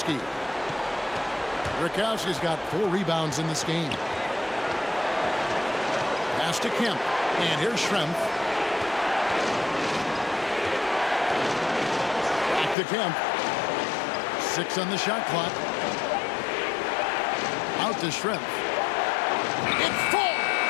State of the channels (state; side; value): drops out; right; at 12.8 s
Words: Brakowski's got 4 rebounds in this game. Pass to Kemp. And here's Schrempf. Back to Kemp. 6 on the shot clock. Out to Schrempf. It